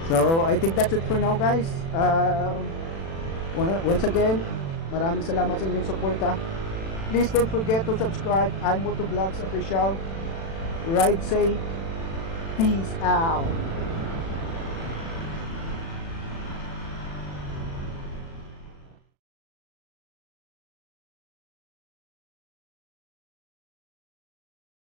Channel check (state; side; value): late; right; 36 ms